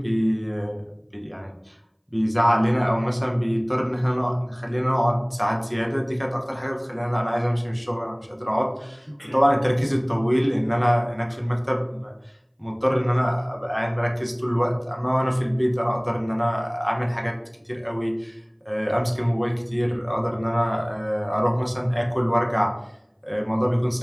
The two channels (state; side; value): identical; both; correlation 1.00